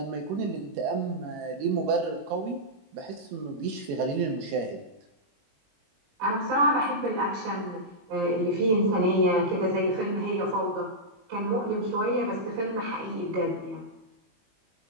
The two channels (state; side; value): late; left; 21 ms